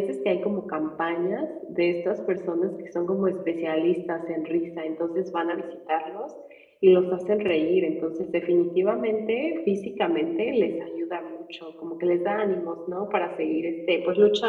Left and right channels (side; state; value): both; identical; correlation 1.00